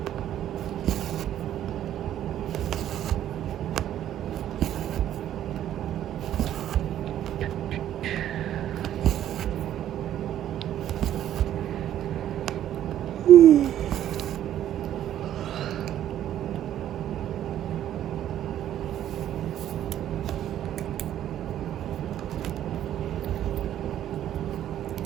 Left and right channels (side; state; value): left; quieter; 11.4 dB